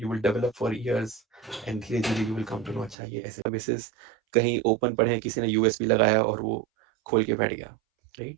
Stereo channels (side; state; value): left; drops out; at 3.0 s